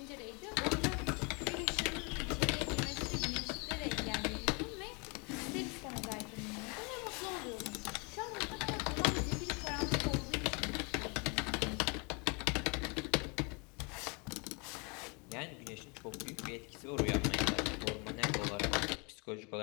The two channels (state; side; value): quieter; right; 31.7 dB